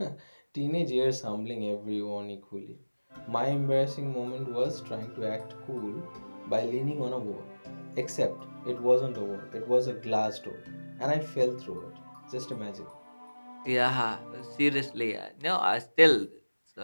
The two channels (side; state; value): both; inverted; correlation -1.00